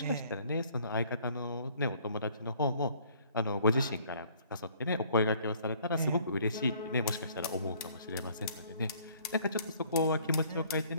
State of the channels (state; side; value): inverted; both; correlation -0.59